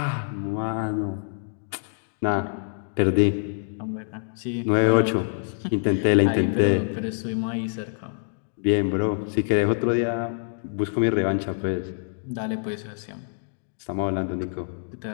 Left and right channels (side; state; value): right; silent; digital silence